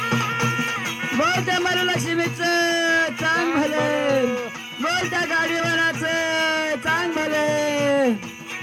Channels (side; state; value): both; identical; correlation 1.00